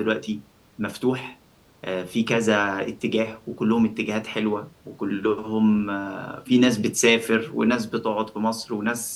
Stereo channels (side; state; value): both; identical; correlation 1.00